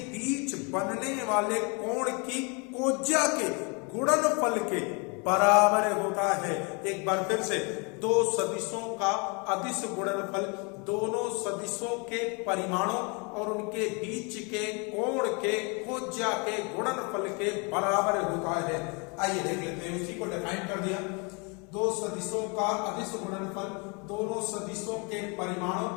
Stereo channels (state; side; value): quieter; right; 32.3 dB